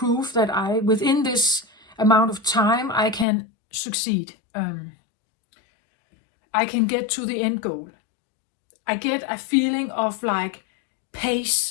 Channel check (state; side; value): drops out; right; at 3.2 s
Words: that within this amount of time, I can succeed. I can get to the end goal. I get a feeling of like